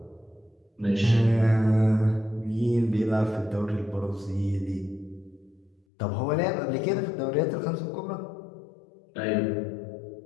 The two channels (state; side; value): drops out; right; at 5.8 s